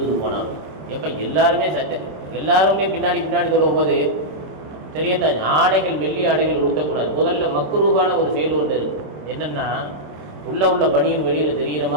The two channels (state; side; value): late; left; 26 ms